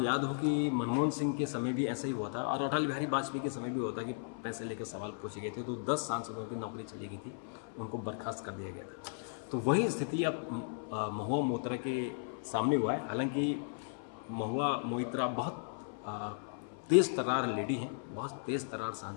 याद हो कि मनमोहन सिंह के समय भी ऐसा ही हुआ था और अटल बिहारी वाजपेयी के समय भी हुआ था कि पैसे लेकर सवाल पूछे गए थे, तो 10 सांसदों की नौकरी चली गई थी, उनको बर्खास्त कर दिया गया था। तो वही स्थिति अब महुआ मोइत्रा के सामने हुआ है। हालांकि महुआ मोइत्रा बहुत तेज़ तर्रार लेडी हैं, बहुत तेज़ तर्रार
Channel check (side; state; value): right; silent; 54 dB below the other